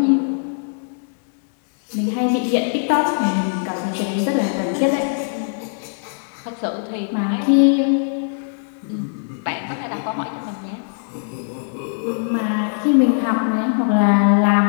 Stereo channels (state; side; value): silent; right; digital silence